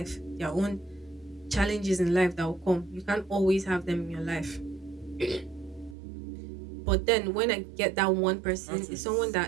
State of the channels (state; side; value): drops out; left; at 6.0 s